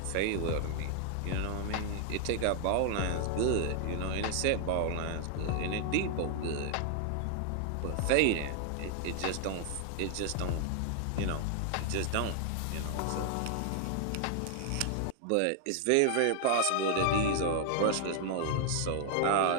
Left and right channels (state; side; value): different; both; correlation 0.00